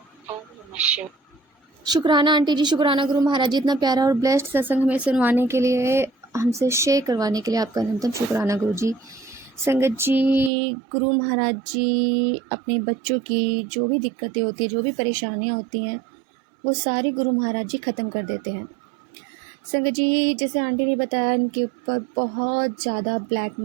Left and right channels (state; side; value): drops out; left; at 10.5 s